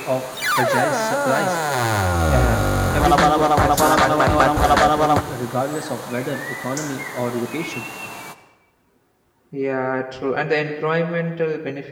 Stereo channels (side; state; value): both; identical; correlation 1.00